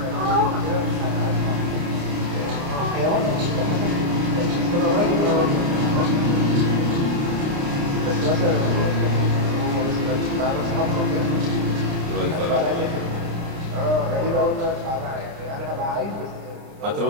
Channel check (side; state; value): left; late; 29 ms